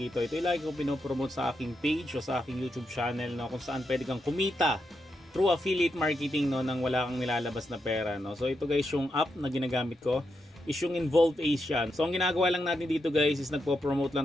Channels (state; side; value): normal; both; correlation 0.84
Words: ito. Ito yung lagi ko pinopromote sa aking page o sa aking YouTube channel, no? Kung saan pwede kang kumita through affiliate marketing, no? Nang wala kang nilalabas na pera, no? So ito guys, yung app na ginagamit ko is yung Involve Asian. So ang ginagawa lang natin dito guys is nagpo-promote